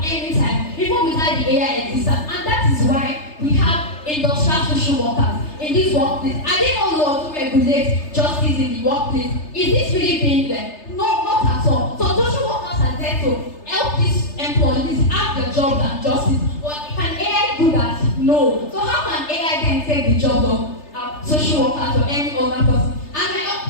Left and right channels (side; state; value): right; late; 3.3 ms